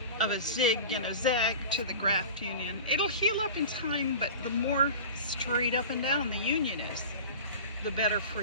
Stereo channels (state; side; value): inverted; both; correlation -0.34